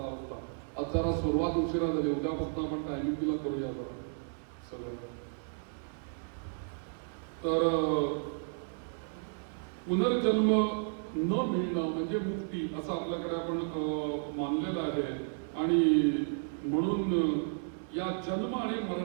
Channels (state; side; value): silent; left; digital silence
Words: आज जरा सुरुवात उशिरा झाली. उद्यापासून आपण टायमिंगला करूया जरा सगळ्यांना. तर पुनर्जन्म न मिळणं म्हणजे मुक्ती असं आपल्याकडे आपण मानलेलं आहे. आणि म्हणून या जन्म आणि